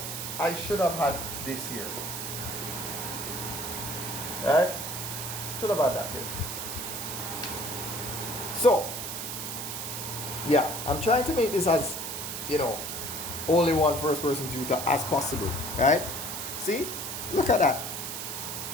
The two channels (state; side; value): noise; right; hiss, 5 dB below the sound